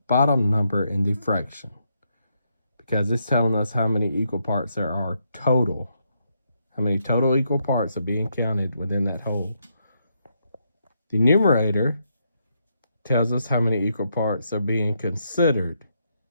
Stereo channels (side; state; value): both; inverted; correlation -0.78